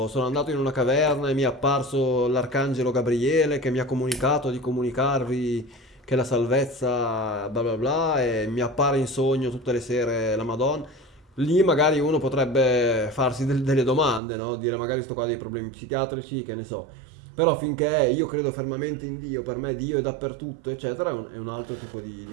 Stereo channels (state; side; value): drops out; left; at 14.2 s